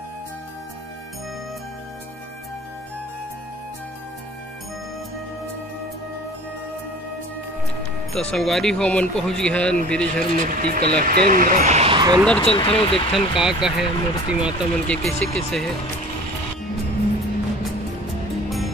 तो संगवारी हो मन पहुँच गया बिरेझर मूर्ति कला केंद्र। अंदर चलते रहो देखथन का है मूर्ति माता मन के कैसे कैसे है।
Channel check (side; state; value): both; normal; correlation 0.44